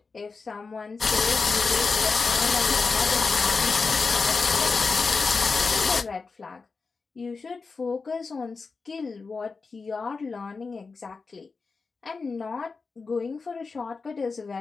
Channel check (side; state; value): right; quieter; 4.5 dB